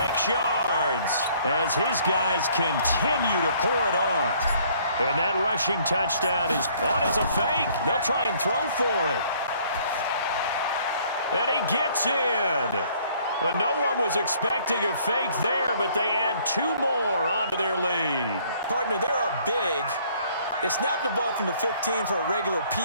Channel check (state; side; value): inverted; both; correlation -0.60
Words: yards, as his guys continue to pour it on. And that rushing touchdown is on as a fake. They'll try and throw for it. And he gets in. But no one was expecting a fake there, but they add 2 more onto their lead. Partner, they're up big. They snapped the ball from the 15 for a regular